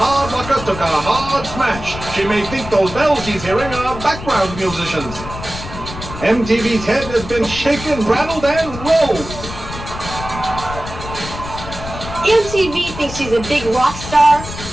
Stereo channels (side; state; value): left; noise; rumble, 11 dB below the sound